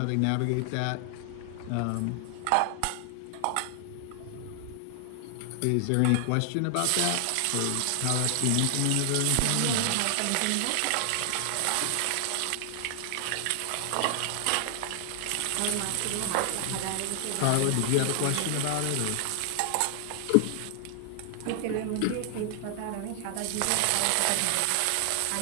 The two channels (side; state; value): both; different; correlation 0.00